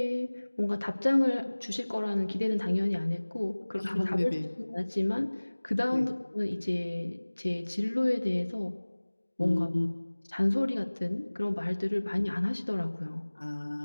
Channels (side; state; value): both; inverted; correlation -1.00